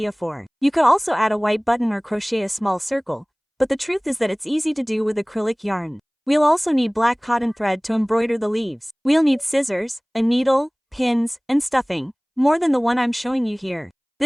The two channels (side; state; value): both; identical; correlation 1.00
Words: for. You could also add a white button or crochet a small circle, but the truth is that it's easy to do with acrylic yarn. We'll also need black cotton thread to embroider the leaves. We'll need scissors, a needle, pins, and stuffing, more than the one I'm showing you here.